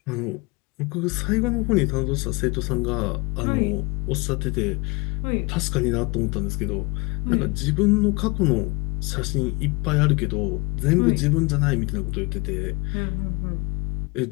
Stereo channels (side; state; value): right; quieter; 26.8 dB